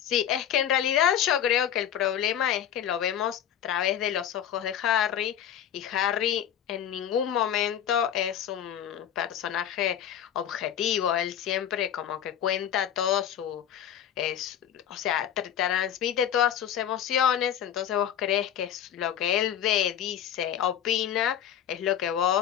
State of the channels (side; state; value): right; quieter; 9.9 dB